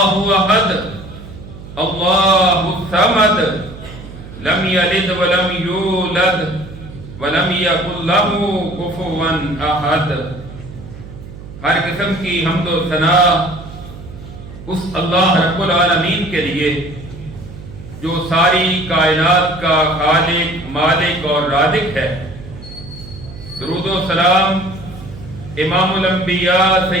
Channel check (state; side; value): noise; right; hum, 14 dB below the sound